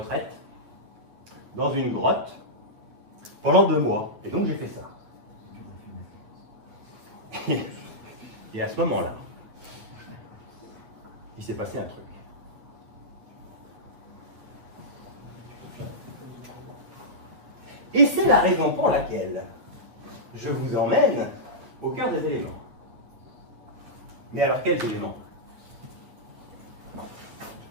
dans une grotte pendant 2 mois. Et donc, j'ai fait ça. Et à ce moment-là, il s'est passé un truc. Et c'est la raison pour laquelle je vous emmène au cœur des éléments. Mais alors, quels éléments?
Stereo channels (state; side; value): late; left; 8.9 ms